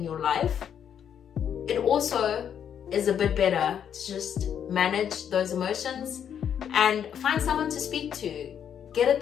your life, it also is a bit better to just manage those emotions and find someone to speak to. Get a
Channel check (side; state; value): right; quieter; 8.7 dB